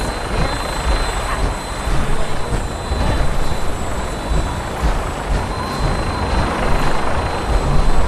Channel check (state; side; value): identical; both; correlation 1.00